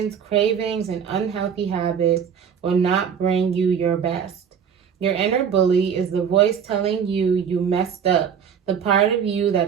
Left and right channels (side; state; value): left; quieter; 7.5 dB